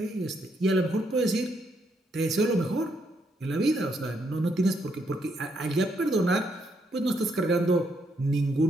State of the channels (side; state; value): both; normal; correlation 0.75